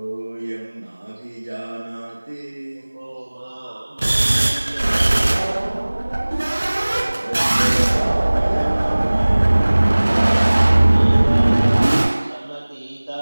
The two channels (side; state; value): both; inverted; correlation -1.00